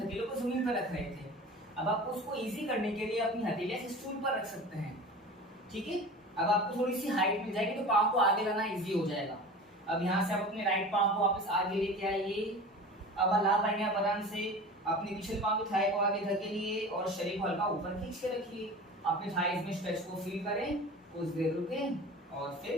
हथेलियों को जमीन पर रख रहे थे, अब आपको उसको इजी करने के लिए अपनी हथेलियां स्टूल पर रख सकते हैं। ठीक है, अब आपको थोड़ी सी हाइट मिल जाएगी तो पांव को आगे लाना इजी हो जाएगा। अब यहाँ से आप अपने राइट पांव को वापस आगे लेके आइए। अब ला पाएंगे आप आराम से, अपने पिछले पांव की थाई को आगे धकेलिए और शरीर को हल्का ऊपर खींच के रखिए। अपने थाइज में स्ट्रेच को फील करें, कुछ देर रुकें और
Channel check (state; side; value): normal; both; correlation 0.36